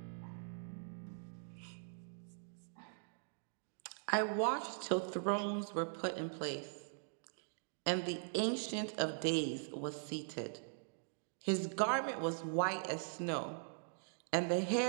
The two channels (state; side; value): silent; left; digital silence